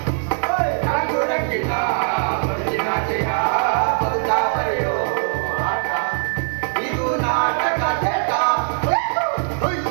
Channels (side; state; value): left; silent; digital silence